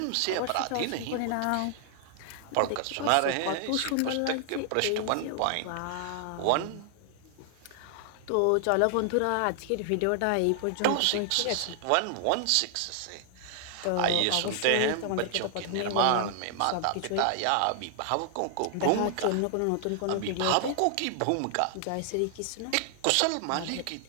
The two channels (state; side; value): different; both; correlation 0.00